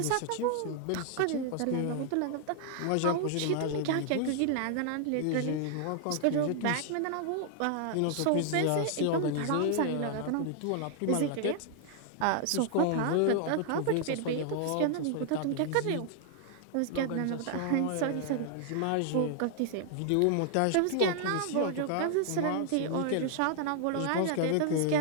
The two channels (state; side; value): different; both; correlation 0.00